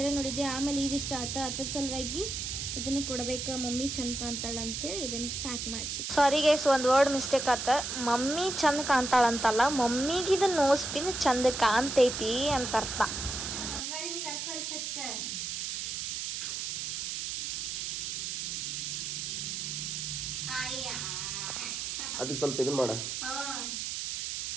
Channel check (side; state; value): right; noise; hiss, 3 dB below the sound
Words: ನೋಡಿದ್ದೆ, ಆಮೇಲೆ ಇದಿಷ್ಟ ಆತ. ಅದ್ರ ಸಲುವಾಗಿ ಇದನ್ನು ಕೊಡಬೇಕು, ಮಮ್ಮಿ ಚಂದ ಕಾಣ್ತಾಳ ಅಂತೇಳಿ ಇದನ್ನು ಪ್ಯಾಕ್ ಮಾಡಿಸಿ. ಸಾರಿ ಗೈಸ್, ಒಂದು ವರ್ಡ್ ಮಿಸ್ಟೇಕ್ ಆತ. ಮಮ್ಮಿ ಚಂದ ಕಾಣ್ತಾಳಂತಲ್ಲ, ಮಮ್ಮಿಗೆ ಇದು ನೋಸ್ ಪಿನ್ ಚಂದ ಕಾಣ್ತೈತಿ ಅಂತ ಅರ್ಥ. ಅದಕ್ಕೆ ಸ್ವಲ್ಪ ಇದನ್ನ ಮಾಡ.